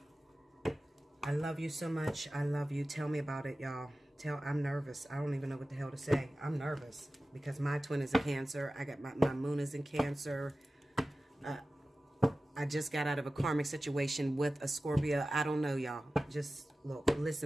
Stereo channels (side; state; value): both; normal; correlation 0.95